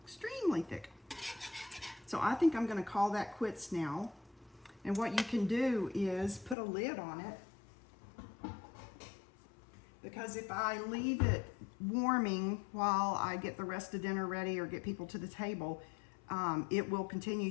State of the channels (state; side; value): drops out; right; at 6.6 s